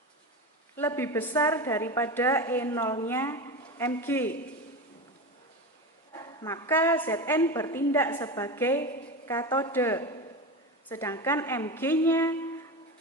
lebih besar daripada E0-nya Mg, maka Zn bertindak sebagai katoda, sedangkan Mg-nya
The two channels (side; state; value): both; normal; correlation 0.23